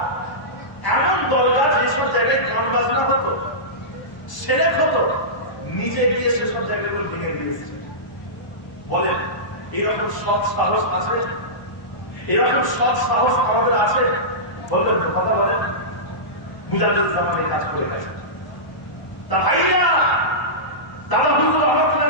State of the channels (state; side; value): late; right; 1.0 ms